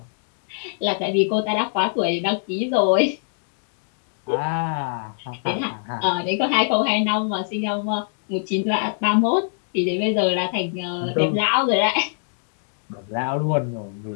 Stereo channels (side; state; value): right; silent; digital silence